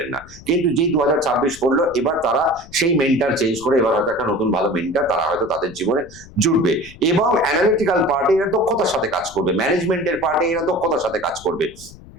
না, কিন্তু যেই 2026 করলো এবার তারা সেই মেন্টার চেঞ্জ করে এবার হয়তো একটা নতুন ভালো মেন্টার তারা হয়তো তাদের জীবনে জুড়বে এবং অ্যানালিটিক্যাল পার্টে এরা দক্ষতার সাথে কাজ করবে, ম্যানেজমেন্টের পার্টে এরা দক্ষতার সাথে কাজ করবে,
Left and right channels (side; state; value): left; noise; rumble, 20 dB below the sound